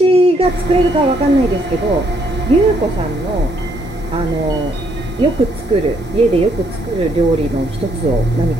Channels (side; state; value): both; normal; correlation 0.71